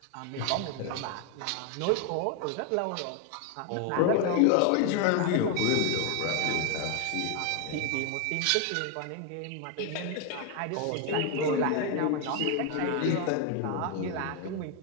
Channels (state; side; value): different; both; correlation 0.01